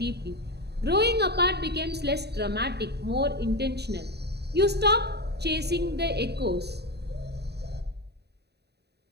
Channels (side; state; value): left; late; 0.48 ms